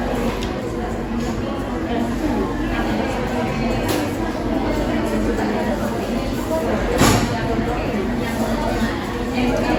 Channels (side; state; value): both; identical; correlation 1.00